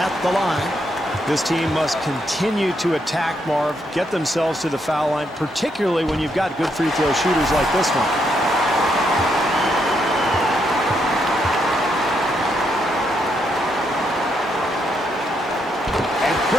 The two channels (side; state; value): both; normal; correlation 0.77